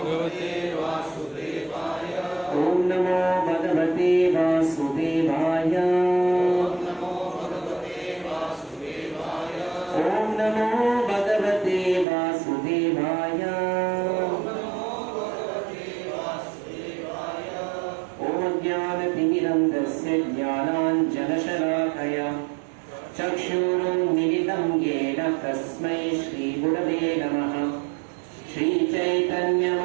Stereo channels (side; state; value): left; drops out; at 12.1 s